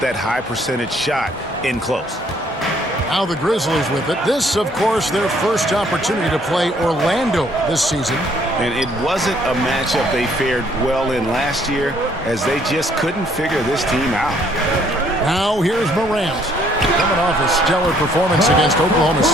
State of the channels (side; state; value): both; normal; correlation 0.64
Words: that high percentage shot in close. Now the Grizzlies with it. This, of course, their first opportunity to play Orlando this season. And it wasn't a matchup they fared well in last year, as they just couldn't figure this team out. Now here's Morant, coming off a stellar performance against Oklahoma